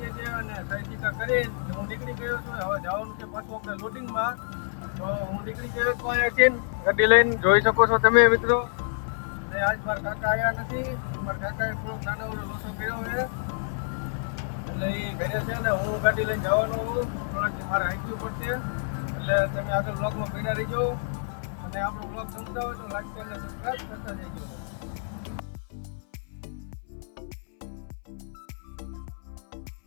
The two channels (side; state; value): right; silent; 59 dB below the other